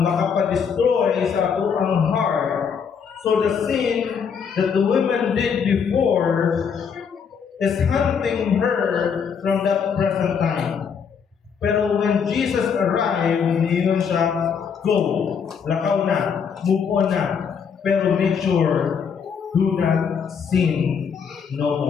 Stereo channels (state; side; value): quieter; right; 6.7 dB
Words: makapadestroy sa atong heart. So the sin that the women did before is hunting her from that present time. Pero when Jesus arrived, niyon siya, "Go, lakaw na, move on na, pero make sure, do not sin no